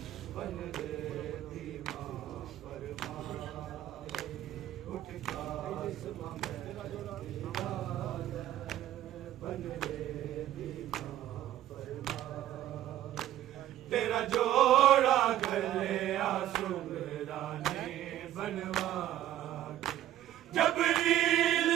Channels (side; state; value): left; quieter; 12.8 dB